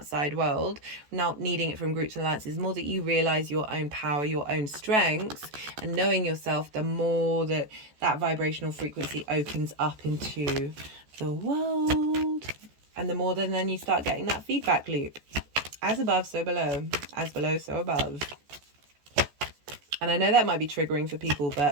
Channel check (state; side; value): late; left; 14 ms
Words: world, not needing it from groups and alliances, the more that you realize your own power, your own strengths, and knowing yourself, the more that vibrational frequency opens up into the world, and the more then you start getting that feedback loop. As above, so below. As below, so above. And I know that might be triggering for people,